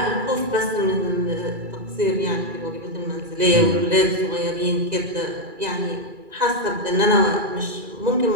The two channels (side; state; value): left; late; 2.3 ms